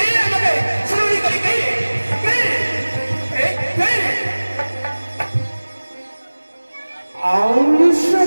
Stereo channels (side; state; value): both; inverted; correlation -1.00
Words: আমাকে স্মরণই করি কে